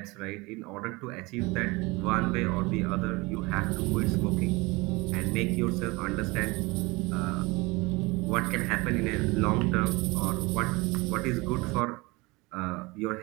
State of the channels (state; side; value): quieter; left; 24.2 dB